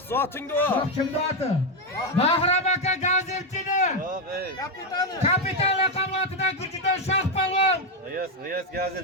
zotingda o. Shoh kimda oti? Bahram aka gazetchini. Yo'q, ey. Kapitan laqabotidan Gurjidon shoh palvon. G'iyos gazet.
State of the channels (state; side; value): normal; both; correlation 0.05